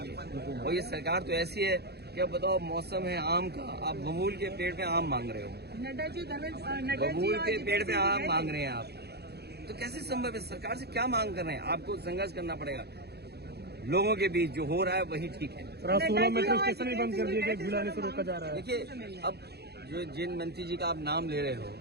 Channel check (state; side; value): late; left; 0.47 ms